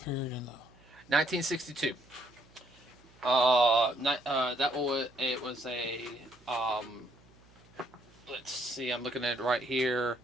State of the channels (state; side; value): noise; right; hum, 27 dB below the sound